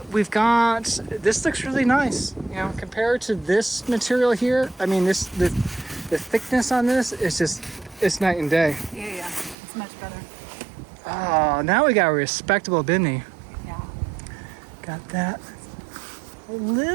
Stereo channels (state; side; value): drops out; left; at 9.6 s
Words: we've got. This looks really nice. Compared to this material here. I mean, the thickness on this is just. It's night and day. Yeah, it's much better. Oh, now we got a respectable Bimini. Yeah. Got that. A